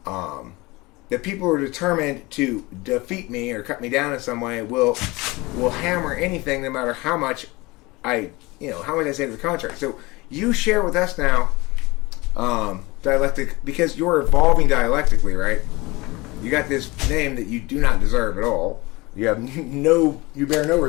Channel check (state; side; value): quieter; right; 22.9 dB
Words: that people who are determined to defeat me or cut me down in some way will hammer anything, no matter how much how much I say to the contrary. So you share with us now dialectic, because you're evolving dialectically, right? You got this name that you do not deserve at all. You bear no